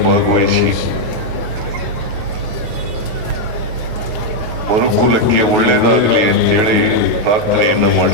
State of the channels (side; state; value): left; late; 9.4 ms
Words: ಮನುಕುಲಕ್ಕೆ ಒಳ್ಳೆಯದಾಗಲಿ ಅಂತೇಳಿ ಪ್ರಾರ್ಥನೆಯನ್ನು